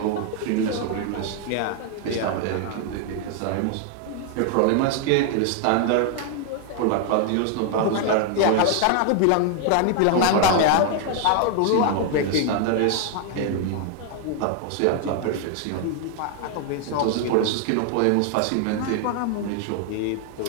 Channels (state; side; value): different; both; correlation 0.00